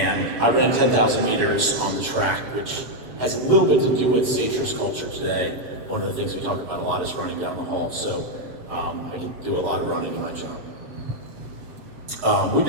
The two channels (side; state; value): left; late; 7.2 ms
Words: I ran 10,000 meters on the track, which has a little bit to do with SageSure's culture today. One of the things we talk about a lot is running down the hall, so I can do a lot of running in my job. We've